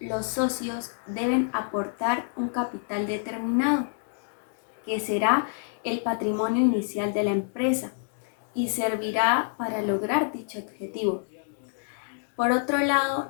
los socios deben aportar un capital determinado, que será el patrimonio inicial de la empresa y servirá para lograr dicho objetivo. Por otro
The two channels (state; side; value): silent; right; digital silence